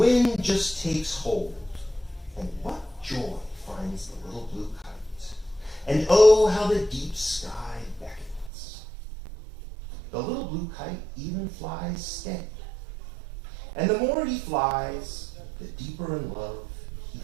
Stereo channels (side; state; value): left; drops out; at 8.5 s